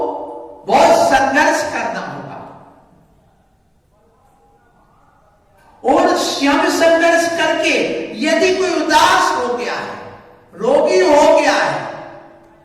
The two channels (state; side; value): identical; both; correlation 1.00